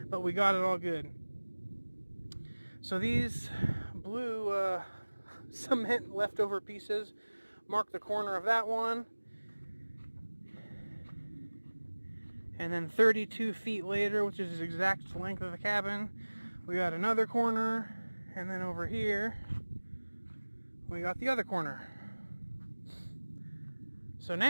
but we got it all good. So these blue cement leftover pieces mark the corner of that one. And then 32 feet later, which is the exact length of the cabin, we got another corner. And then over here, we got the other corner. So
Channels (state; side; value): inverted; both; correlation -1.00